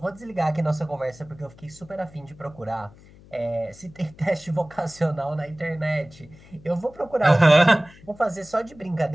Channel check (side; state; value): left; noise; hum, 23 dB below the sound